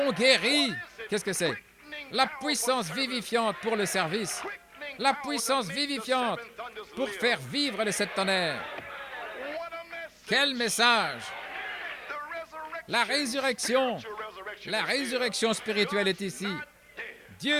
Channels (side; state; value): both; identical; correlation 1.00